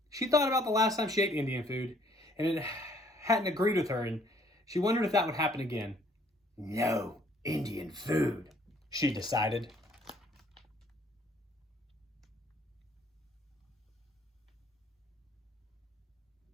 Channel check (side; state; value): both; normal; correlation 0.61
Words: she thought about the last time she ate Indian food, and it hadn't agreed with her, and she wondered if that would happen again. "No Indian food," she decided.